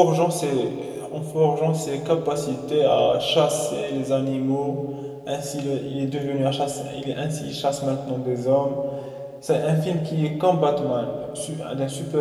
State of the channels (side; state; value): both; identical; correlation 1.00